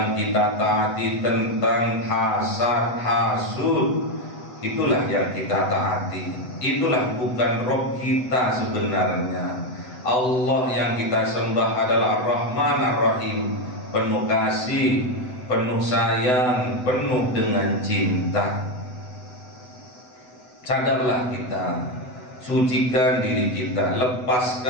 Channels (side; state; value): right; late; 8.0 ms